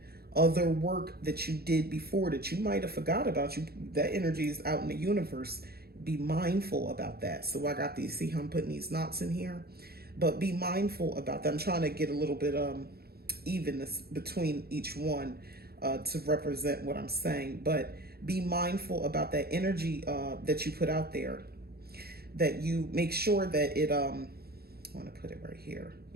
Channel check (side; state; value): left; late; 0.46 ms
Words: other work that you did before that you might have forgot about. You, that energy is out in the universe. Be mindful about that. So I got these, see how I'm putting these knots in here? But be mindful about that. I'm trying to get a little bit evenness between each one to represent what I'm saying. But be mindful about that energy that you put out there, that you make sure that it, I want to put it right here.